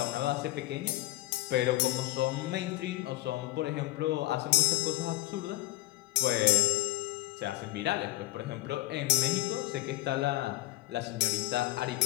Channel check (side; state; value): right; quieter; 17.8 dB